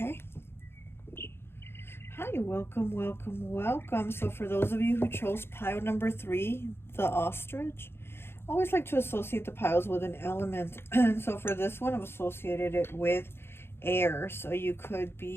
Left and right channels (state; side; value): late; right; 0.11 ms